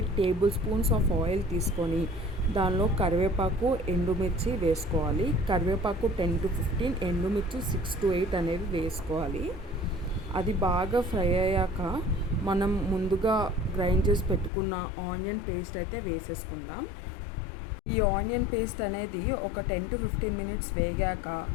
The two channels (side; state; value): right; drops out; at 14.5 s